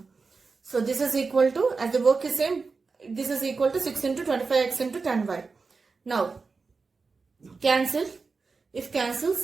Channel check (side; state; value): left; quieter; 4.4 dB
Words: So this is equal to, as the work is same, this is equal to 6 into 25x into 10y. Now, cancel. If